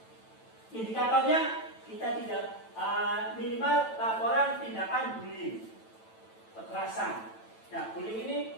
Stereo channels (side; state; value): right; late; 9.1 ms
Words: Indikatornya kita tidak minimal laporan tindakan bullying, kekerasan. Nah, bullying ini